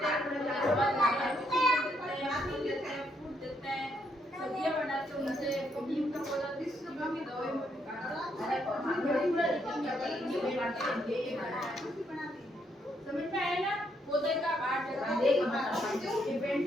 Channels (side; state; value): both; normal; correlation 0.75